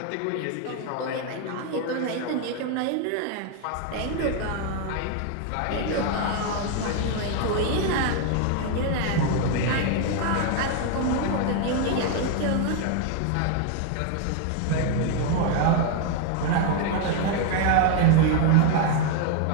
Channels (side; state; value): both; different; correlation 0.01